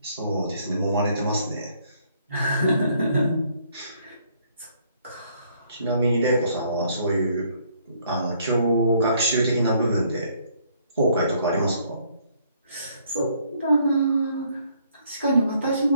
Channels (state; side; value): inverted; both; correlation -0.66